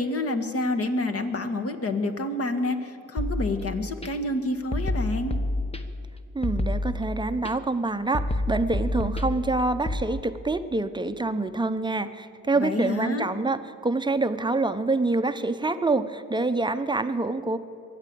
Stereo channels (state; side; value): normal; both; correlation 0.61